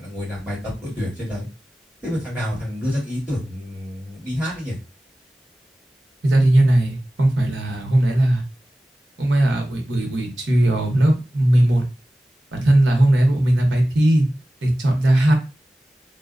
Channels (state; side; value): normal; both; correlation 0.96